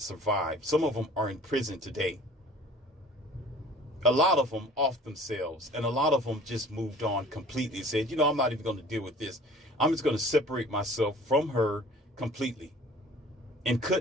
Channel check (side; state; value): both; normal; correlation 0.49